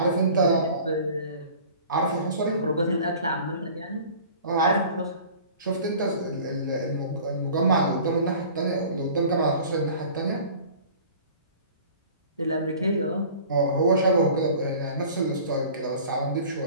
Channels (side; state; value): both; inverted; correlation -0.45